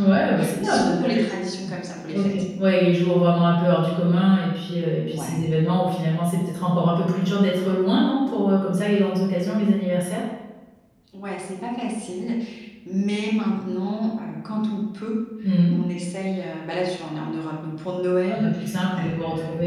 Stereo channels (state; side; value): identical; both; correlation 1.00